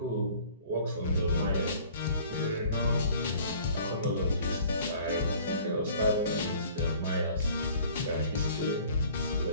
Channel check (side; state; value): both; inverted; correlation -0.51